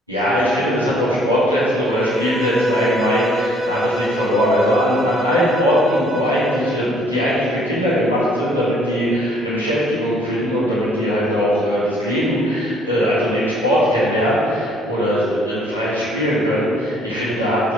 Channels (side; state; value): both; normal; correlation 0.61